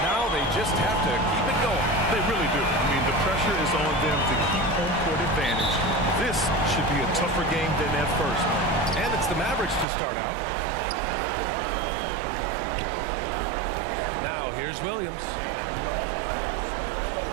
Now they just have to keep it going. They really do. I mean, the pressure is on them to keep home court advantage. This should be a tougher game than that first one. And it's the Mavericks to start out. Now here's Williams.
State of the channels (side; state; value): left; drops out; at 9.9 s